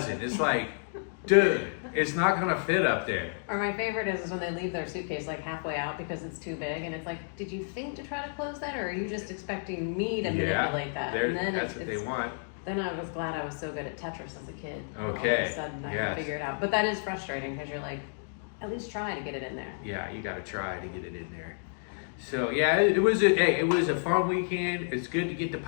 It's like, dude, it's not gonna fit up there. Or my favorite is when they leave their suitcase like halfway out because it's too big, and it's like, did you think to try to close that, or are you just expecting me to manipulate that? And then that's what they want. Then I was glad I was so good at Tetris as a kid. Okay. All of a sudden I can figure it out. But that is frustrating because you're like, at least try to get it in there. Yeah, you got to try to get it in there. So yeah, it was a fun weekend. It's good to get the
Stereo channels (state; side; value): silent; right; digital silence